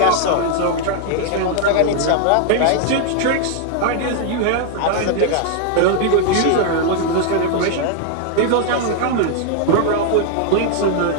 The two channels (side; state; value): both; different; correlation 0.00